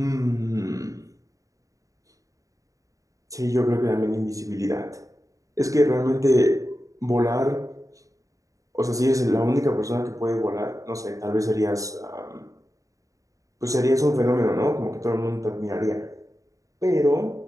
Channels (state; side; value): late; left; 0.16 ms